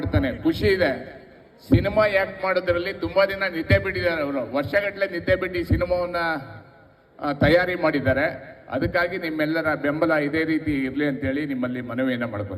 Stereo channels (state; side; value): identical; both; correlation 1.00